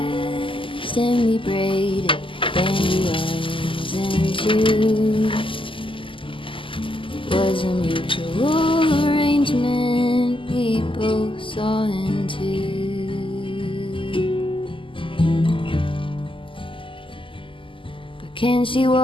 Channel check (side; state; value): right; late; 0.25 ms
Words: and we braided dandelions into was a mutual arrangement we both saw into. But can she